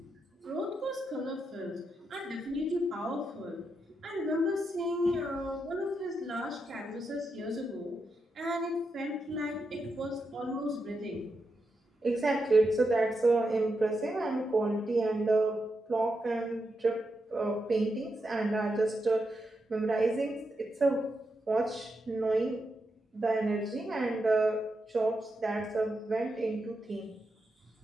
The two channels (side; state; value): both; normal; correlation 0.85